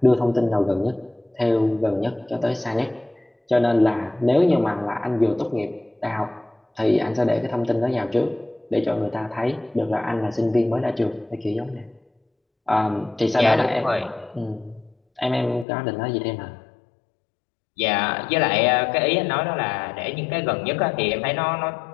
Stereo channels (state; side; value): drops out; right; at 15.7 s